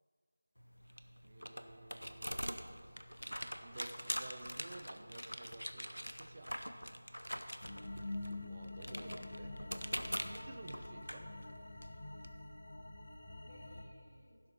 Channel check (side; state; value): both; inverted; correlation -0.98